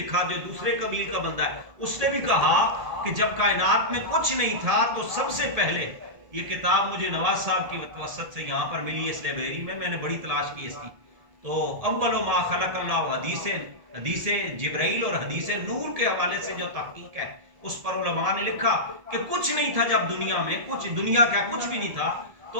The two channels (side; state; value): left; late; 1.8 ms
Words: جو دوسرے قبیل کا بندہ ہے, اس نے بھی کہا کہ جب کائنات میں کچھ نہیں تھا تو سب سے پہلے, یہ کتاب مجھے نواز صاحب کی وسط سے یہاں پر ملی اس لائبریری میں نے بڑی تلاش کی اس کی, تو اول ما خلق اللہ حدیث جبرائیل اور حدیث نور کے حوالے سے جو تحقیق ہے اس پر علماء نے لکھا کہ کچھ نہیں تھا جب دنیا میں, کچھ دنیا کا کچھ بھی نہیں تھا,